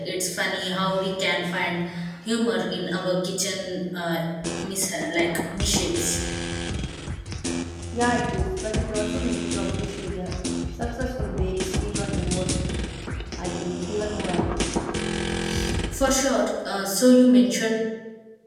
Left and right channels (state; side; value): identical; both; correlation 1.00